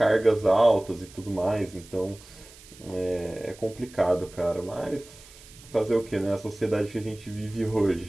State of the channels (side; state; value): right; noise; hiss, 21 dB below the sound